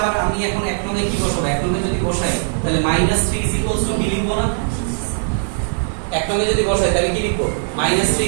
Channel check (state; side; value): silent; left; digital silence